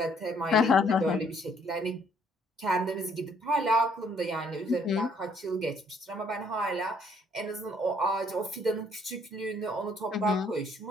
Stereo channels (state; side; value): normal; both; correlation 0.65